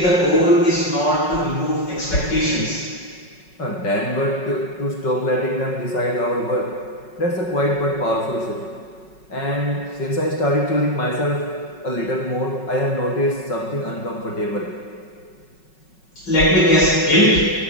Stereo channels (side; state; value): right; late; 5.4 ms